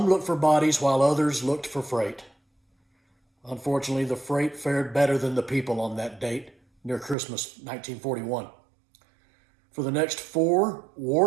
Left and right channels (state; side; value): drops out; left; at 7.2 s